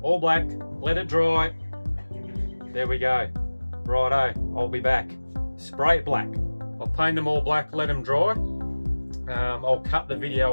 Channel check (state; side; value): inverted; both; correlation -1.00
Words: all black, let it dry. There we go. Righto, I'll be back. Spray it black. I'll paint them all black, let them dry. I'll cut the